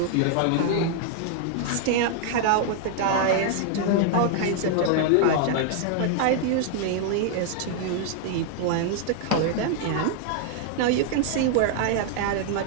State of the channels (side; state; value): both; different; correlation 0.00